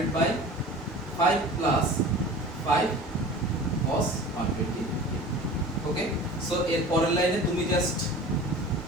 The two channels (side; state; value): both; normal; correlation 0.39